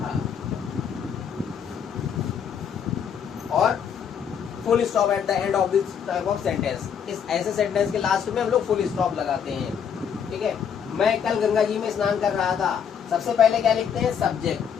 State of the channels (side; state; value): right; quieter; 7.6 dB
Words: और full stop at the end of this type of sentence. इस ऐसे सेंटेंस के लास्ट में हम लोग फुल स्टॉप लगाते हैं। ठीक है। मैं कल गंगा जी में स्नान कर रहा था। सबसे पहले क्या लिखते हैं? सब्जेक्ट।